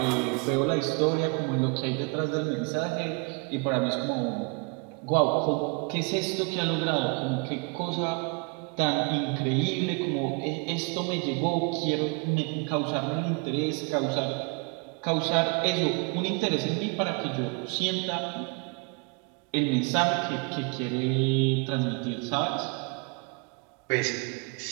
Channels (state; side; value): quieter; left; 32.4 dB